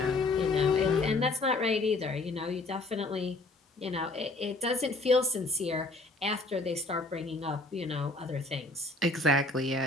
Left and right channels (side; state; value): right; quieter; 3.0 dB